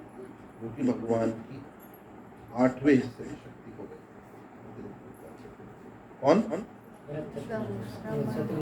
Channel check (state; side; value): identical; both; correlation 1.00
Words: जो कि भगवान की 8वें हिस्से की शक्ति को गई। कौन?